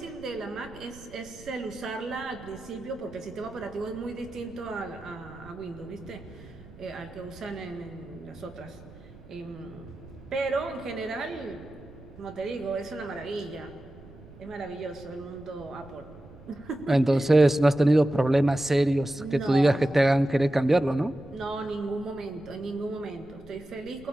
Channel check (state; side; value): noise; right; rumble, 20 dB below the sound